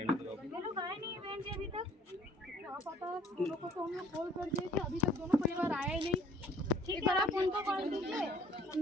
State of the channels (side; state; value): both; normal; correlation 0.56